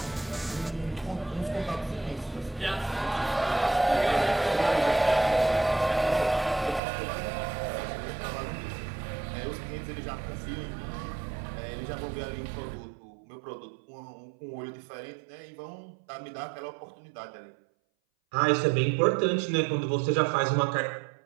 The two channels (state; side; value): drops out; left; at 6.8 s